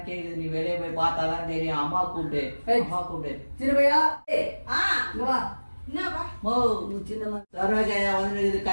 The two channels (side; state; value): both; inverted; correlation -1.00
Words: கேக்குது, நீ வெளியே போய் பார்த்தாதான் தெரியும். அம்மா கூப்பிட்டு, அம்மா கூப்பிட்டு. சின்னப்பையா வா. மோ சின்ன சரோஜாயா வந்து